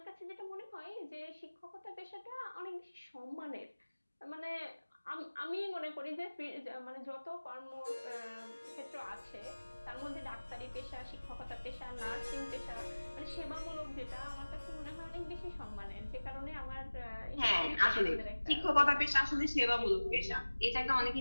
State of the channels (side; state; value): both; inverted; correlation -1.00